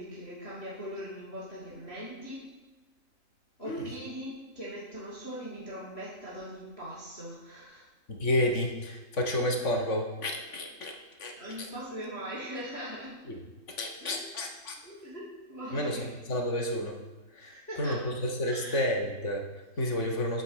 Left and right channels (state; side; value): late; right; 3.5 ms